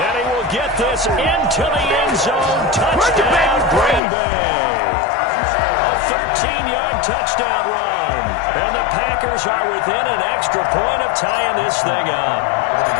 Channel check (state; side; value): drops out; right; at 4.0 s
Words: he will get this into the end zone. Touchdown, Green Bay. A 13-yard touchdown run. And the Packers are within an extra point of tying this thing up.